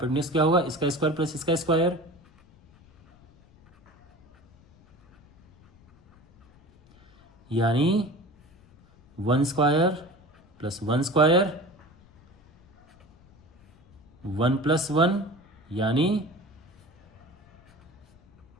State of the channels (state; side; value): noise; left; rumble, 28 dB below the sound